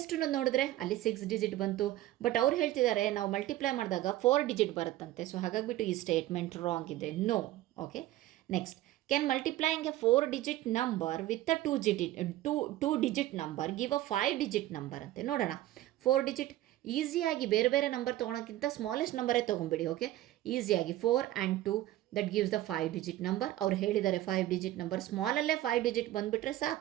ನೋಡಿದ್ರೆ ಅಲ್ಲಿ 6 digit ಬಂತು. ಬಟ್ ಅವ್ರು ಹೇಳ್ತಿದ್ದಾರೆ ನಾವು ಮಲ್ಟಿಪ್ಲೈ ಮಾಡಿದಾಗ 4 digit ಬರುತ್ತಂತೆ. ಸೊ ಹಾಗಾಗಿಬಿಟ್ಟು ಈ ಸ್ಟೇಟ್ಮೆಂಟ್ ರಾಂಗ್ ಇದೆ. No. Okay. Next can multiplying a 4 digit number with a 2 digit number give a 5 digit number ಅಂತೆ. ನೋಡೋಣ. 4 digit ಈಸಿಯಾಗಿ ಬೇರೆ ಬೇರೆ ನಂಬರ್ ತೊಗೊಳೋಕ್ಕಿಂತ ಸ್ಮಾಲೆಸ್ಟ್ ನಂಬರೇ ತೊಗೊಂಬಿಡಿ. ಓಕೆ. ಈಸಿಯಾಗಿ 4 and 2 that gives the 5 digit number. ಅವ್ರು ಹೇಳಿದ್ದಾರೆ 5 digit ನಂಬರ್, ಸ್ಮಾಲಲ್ಲೇ 5 digit ಬಂದುಬಿಟ್ರೆ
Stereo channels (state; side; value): quieter; left; 15.0 dB